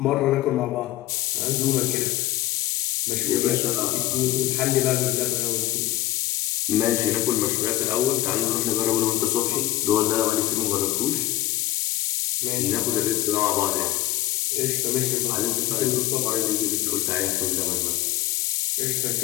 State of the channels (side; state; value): right; quieter; 15.3 dB